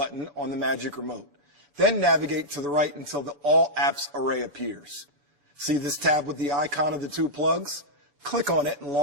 on the Magic Remote. Then navigate to the right until the All Apps array appears. See this tab with the icon of the two plugs? Click on it and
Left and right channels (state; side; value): late; left; 7.0 ms